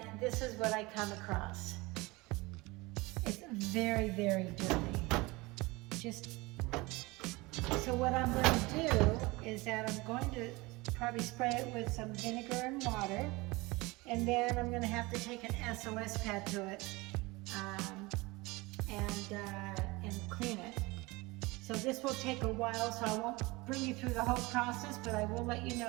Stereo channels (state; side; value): quieter; left; 23.1 dB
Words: this is what I come across. It's very, very dirty. So what I'm going to do is that I'm going to probably spray it with some vinegar and water, and then I'm going to have to take an SOS pad to it and clean it. So this will take a while, so I won't bring you through the whole process, but I will let you